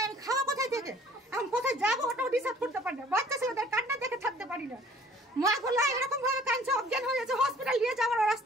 আমি খাওয়া কোথায় থেকে? আমি কোথায় যাবো ওটাও ডিসাইড করতে পারি না। বাচ্চা ছেলেদের কান্না দেখে থাকতে পারি না। মা গোলা এরকম ভাবে কাঁদছে, অজ্ঞান হয়ে যাচ্ছে, হসপিটাল নিয়ে যাওয়ার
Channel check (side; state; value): both; normal; correlation 0.54